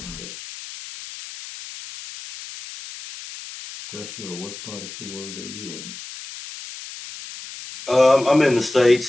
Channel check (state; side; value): noise; left; hiss, 13 dB below the sound